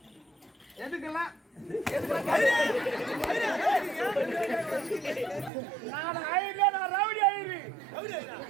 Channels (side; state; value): left; drops out; at 5.5 s